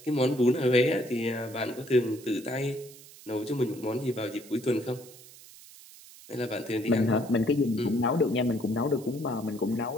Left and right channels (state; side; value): noise; right; hiss, 20 dB below the sound